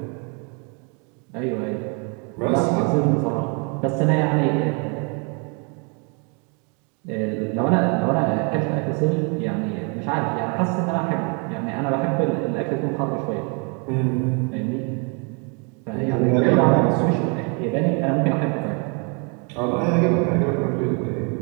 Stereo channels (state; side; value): quieter; left; 35.3 dB